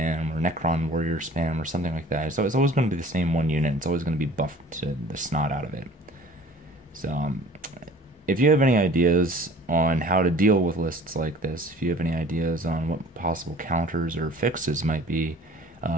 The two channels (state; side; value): normal; both; correlation 0.48